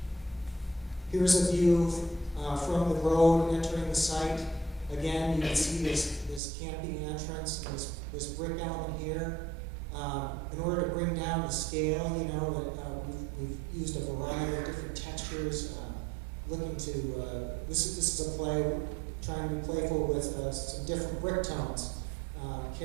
Here's a view from the road entering the site. Again, you can see this canopy entrance, and this brick element here. In order to bring down the scale, you know, we've used a variety of different textures. Looking to this is a play trying to be playful with some different brick tones,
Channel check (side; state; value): left; drops out; at 6.4 s